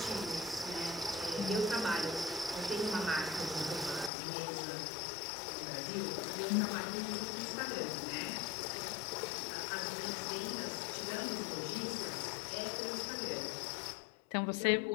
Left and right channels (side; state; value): right; drops out; at 4.1 s